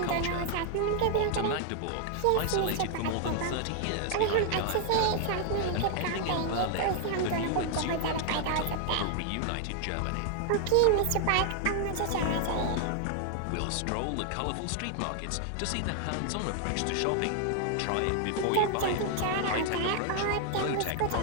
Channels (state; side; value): different; both; correlation 0.00